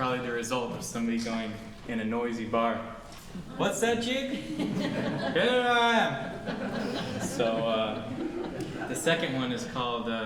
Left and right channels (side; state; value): both; identical; correlation 1.00